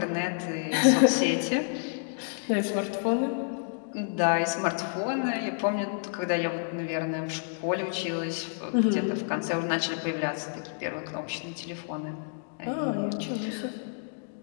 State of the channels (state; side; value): silent; right; digital silence